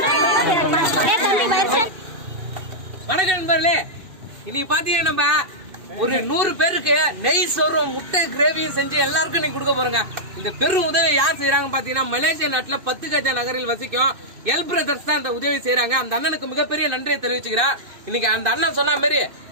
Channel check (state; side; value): late; left; 2.6 ms